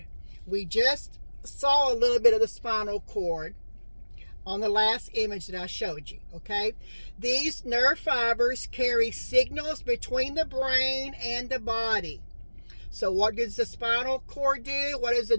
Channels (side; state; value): both; inverted; correlation -1.00